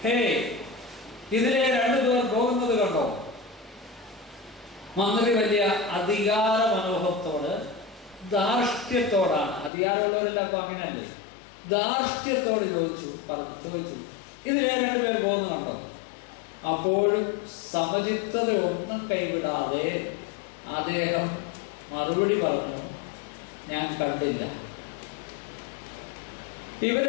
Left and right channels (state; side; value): drops out; right; at 9.7 s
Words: ഹേ, ഇതിലെ രണ്ടുപേർ പോകുന്നത് കണ്ടോ? മന്ത്രി വലിയ അധികാര മനോഭത്തോട്, ധാർഷ്ട്യത്തോടാണ്, അധികാരമുള്ളവരെല്ലാം അപ്പൊ അങ്ങനെയല്ലേ, ധാർഷ്ട്യത്തോട് ചോദിച്ചു, ഇതിലെ രണ്ടുപേർ പോകുന്നത് കണ്ടോ? അപ്പോഴും സമചിത്തത ഒന്നും കൈവിടാതെ അദ്ദേഹം മറുപടി പറഞ്ഞു, ഞാൻ കണ്ടില്ല. ഇവർ